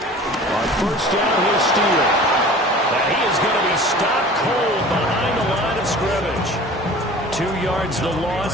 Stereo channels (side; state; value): both; normal; correlation 0.42